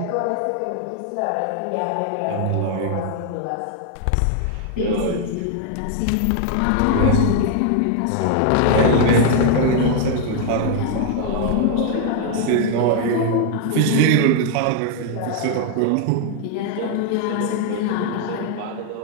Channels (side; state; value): both; different; correlation 0.00